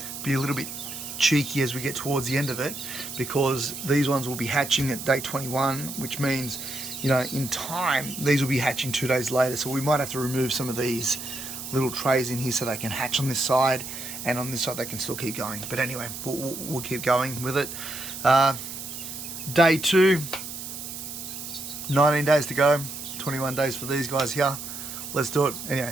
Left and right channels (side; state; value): right; noise; hiss, 9 dB below the sound